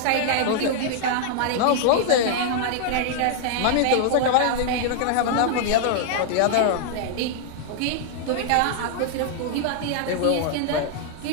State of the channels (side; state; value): both; different; correlation -0.01